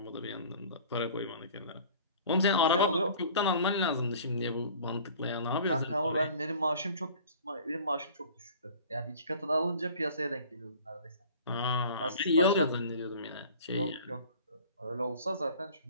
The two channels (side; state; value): both; inverted; correlation -0.46